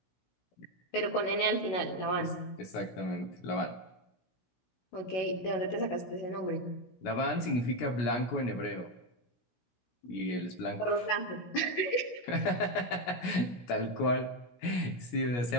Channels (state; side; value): late; right; 16 ms